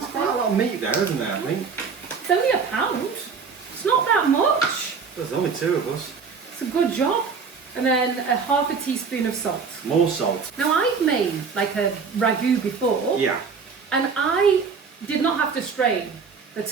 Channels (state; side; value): quieter; left; 5.5 dB